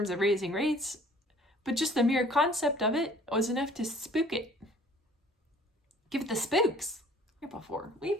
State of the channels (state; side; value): normal; both; correlation 0.53